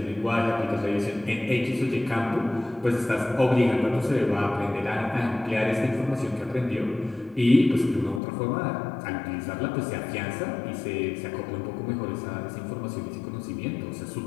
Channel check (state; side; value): drops out; right; at 8.2 s